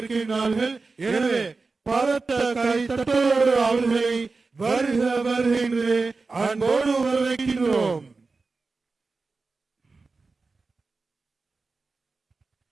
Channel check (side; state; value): left; quieter; 4.0 dB